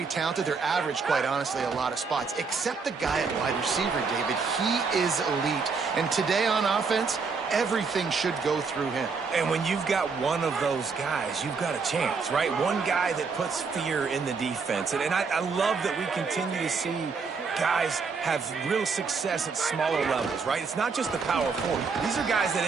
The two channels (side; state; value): left; quieter; 5.0 dB